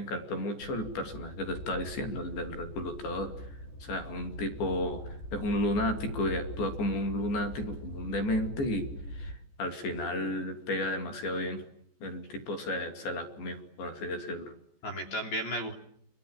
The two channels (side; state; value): right; late; 14 ms